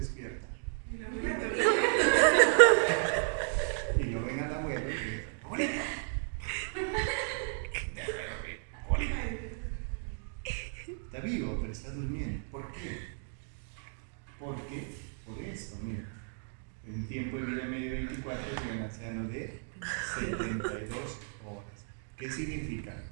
Y lo ven al abuelo y dice, ¡abuelito! Está vivo, pero está durmiendo. ¿Por qué? Porque, por esto, mira, en tiempo de vida medio 24 es un anciano de 72 horas. ¿Qué significa?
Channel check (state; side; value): silent; left; 55 dB below the other